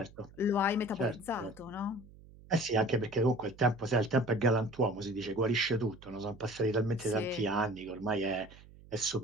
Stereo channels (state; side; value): noise; right; hum, 21 dB below the sound